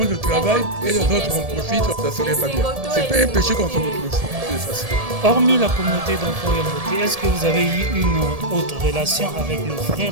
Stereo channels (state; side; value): late; left; 1.7 ms